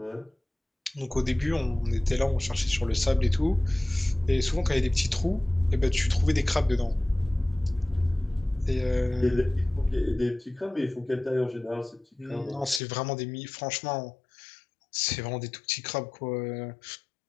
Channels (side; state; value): right; drops out; at 12.8 s